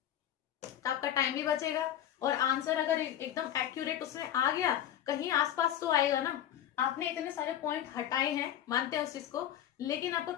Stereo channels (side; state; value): right; quieter; 11.1 dB